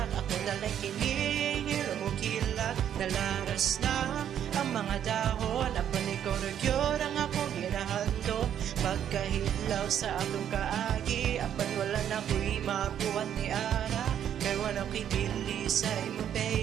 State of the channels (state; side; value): quieter; left; 9.7 dB